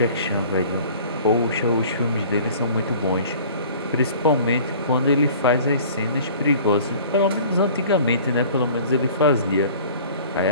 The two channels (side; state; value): both; inverted; correlation -0.47